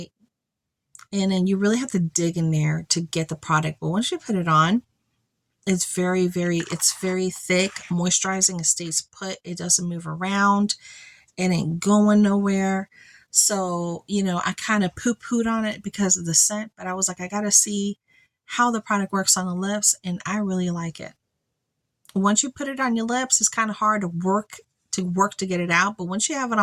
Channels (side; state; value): both; identical; correlation 1.00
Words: and then you really have to dig in there to get the product. But once you put it on, it's very thick, moisturizing. It stays put. It doesn't move around. It ain't going nowhere. So, you know, I kind of poo-pooed on it because of the scent, but I was like, I got to see how the product works on the lips, and I really like it. Once you put it on your lips, it's kind of hard to work to get it out, but once you have it